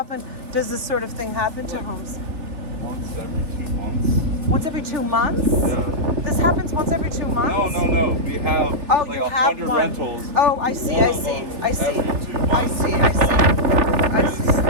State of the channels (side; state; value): left; late; 3.4 ms